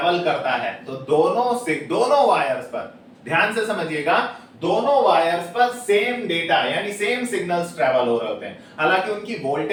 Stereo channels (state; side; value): identical; both; correlation 1.00